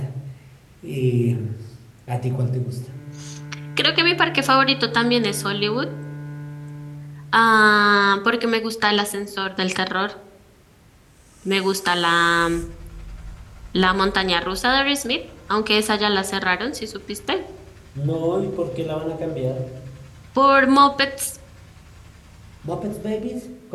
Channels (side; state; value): both; identical; correlation 1.00